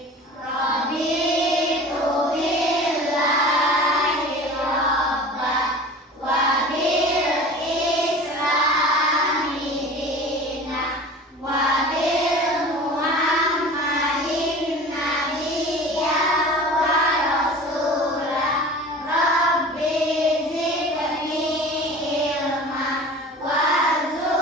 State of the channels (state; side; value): normal; both; correlation 0.39